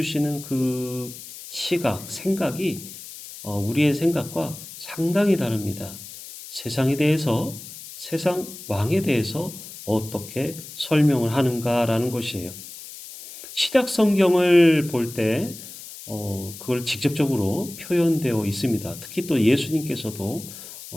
그 시각, 생각이 우리의 생각과 상당히 다릅니다. 세상에 대해서, 세상 왕에 대해서 어떻게 설명을 하는가라는 것이에요. 신약 성경을 볼 때 그걸 직접적으로 표현되어 있습니다. 특히 또 예수님께서도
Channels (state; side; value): noise; left; hiss, 14 dB below the sound